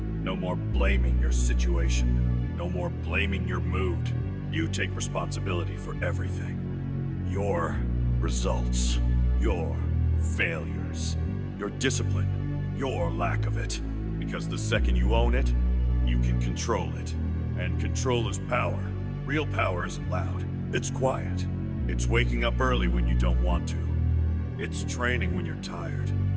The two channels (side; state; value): both; identical; correlation 1.00